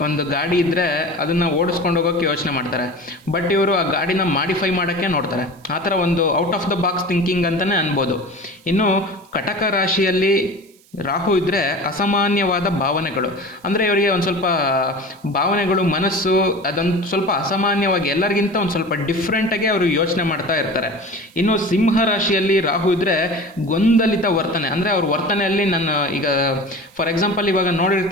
ಗಾಡಿ ಇದ್ದರೆ ಅದನ್ನು ಓಡಿಸ್ಕೊಂಡು ಹೋಗೋಕ್ಕೆ ಯೋಚನೆ ಮಾಡ್ತಾರೆ. ಬಟ್ ಇವರು ಆ ಗಾಡಿನ ಮಾಡಿಫೈ ಮಾಡೋಕ್ಕೆ ನೋಡ್ತಾರೆ. ಆ ಥರ ಒಂದು out of the box thinking ಅಂತಲೇ ಅನ್ಬೋದು. ಇನ್ನು ಕಟಕ ರಾಶಿಯಲ್ಲಿ ರಾಹು ಇದ್ದರೆ ಅಸಾಮಾನ್ಯವಾದ ಭಾವನೆಗಳು. ಅಂದರೆ ಇವರಿಗೆ ಒಂದು ಸ್ವಲ್ಪ ಭಾವನೆಗಳು, ಮನಸ್ಸು ಅದೊಂದು ಸ್ವಲ್ಪ ಅಸಾಮಾನ್ಯವಾಗಿ ಎಲ್ಲರಿಗಿಂತ ಒಂದು ಸ್ವಲ್ಪ ಡಿಫ್ರೆಂಟಾಗಿ ಅವರು ಯೋಚನೆ ಮಾಡ್ತಾ ಇರ್ತಾರೆ. ಇನ್ನು ಸಿಂಹ ರಾಶಿಯಲ್ಲಿ ರಾಹು ಇದ್ದರೆ ಗೊಂದಲಿತ ವರ್ತನೆ. ಅಂದರೆ ಅವ್ರ ವರ್ತನೆಯಲ್ಲಿ ಫಾರ್ ಎಕ್ಸಾಂಪಲ್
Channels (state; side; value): noise; right; hiss, 29 dB below the sound